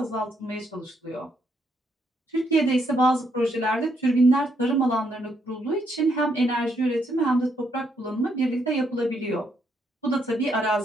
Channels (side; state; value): both; normal; correlation 0.75